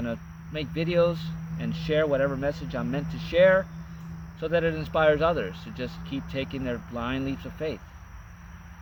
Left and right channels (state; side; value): identical; both; correlation 1.00